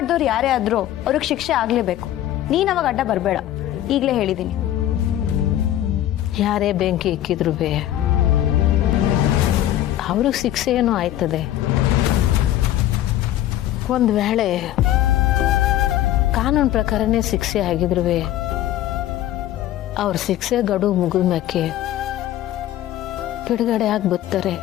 ಯಾರೇ ಆದ್ರೂ ಅವ್ರಿಗೆ ಶಿಕ್ಷೆ ಆಗ್ಲೇಬೇಕು. ನೀನ್ ಅವಾಗ ಅಡ್ಡ ಬರಬೇಡ, ಈಗಲೇ ಹೇಳಿದೀನಿ. ಯಾರೇ ಬೆಂಕಿ ಇಕ್ಕಿದ್ರು ಅವ್ರಿಗೆ ಶಿಕ್ಷೆ ಏನೋ ಆಯ್ತದೆ. ಒಂದು ವೇಳೆ ಕಾನೂನು ಪ್ರಕಾರನೇ ಶಿಕ್ಷೆ ಆಗಿದ್ರು ಅವ್ರ ಶಿಕ್ಷೆ ಗಡುವು ಮುಗಿದ ಮ್ಯಾಕೆ ಬಿಡುಗಡೆ ಆಗಿ ಬರ್ತಾರೆ.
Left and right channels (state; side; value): quieter; right; 12.9 dB